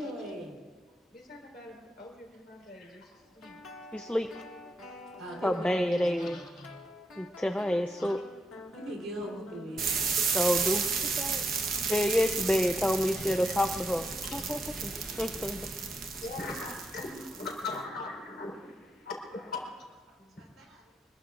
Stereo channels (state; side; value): normal; both; correlation 0.81